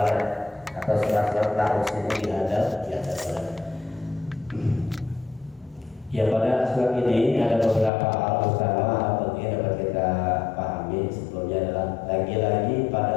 atau surat-surat Ta'us ini dihadap di atas surat. Ya, pada surat ini ada beberapa hal utama yang penting dapat kita pahami. Sebelumnya adalah lagi-lagi pada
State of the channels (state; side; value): drops out; right; at 7.9 s